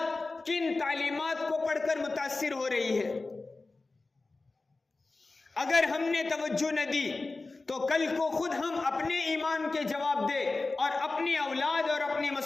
کن تعلیمات کو پڑھ کر متاثر ہو رہی ہے۔ اگر ہم نے توجہ نہ دی تو کل کو خود ہم اپنے ایمان کے جواب دے اور اپنی اولاد اور اپنی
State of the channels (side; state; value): right; quieter; 3.5 dB